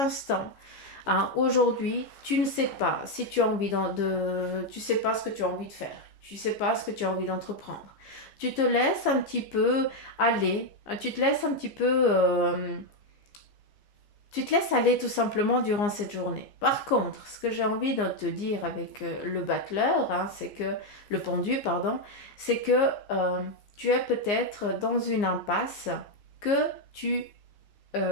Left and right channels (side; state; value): right; late; 15 ms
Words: hein, aujourd'hui, tu ne sais pas si tu as envie tu sais pas ce que tu as envie de faire. Tu sais pas ce que tu as envie d'entreprendre. Tu te laisses un petit peu aller. Tu te laisses un petit peu tu te laisses aller tout simplement durant cette journée. Par contre, ce que j'ai envie de te dire avec le battleur, hein, c'est que le pendu, pardon, c'est que tu es peut-être dans une impasse que tu